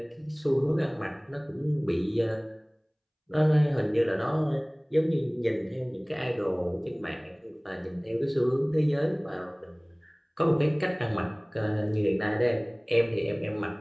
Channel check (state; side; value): identical; both; correlation 1.00